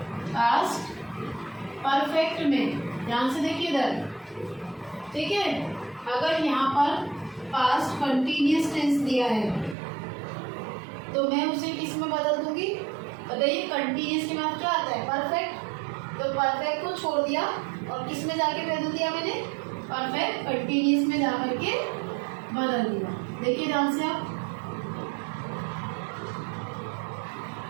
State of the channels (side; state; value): left; drops out; at 9.8 s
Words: पास्ट परफेक्ट में। ध्यान से देखिए इधर, ठीक है। अगर यहाँ पर पास्ट कंटिन्यूस टेंस दिया है तो मैं उसे किस में बदल दूंगी? बताइए, कंटिन्यूस के बाद क्या आता है? परफेक्ट। तो परफेक्ट को छोड़ दिया और किस में जाके बदल दिया मैंने? परफेक्ट कंटिन्यूस में जाकर के बदल दिया। देखिए ध्यान से आप,